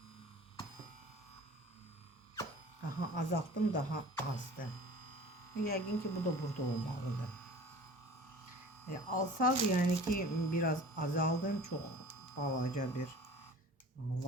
Azalttım, daha azdı. Yəqin ki bu da burada olmalıdır. Alsaz yani ki biraz azaldım. Çok balaca bir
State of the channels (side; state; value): both; normal; correlation 0.43